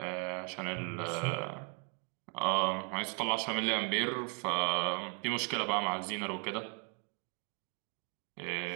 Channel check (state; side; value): quieter; left; 36.4 dB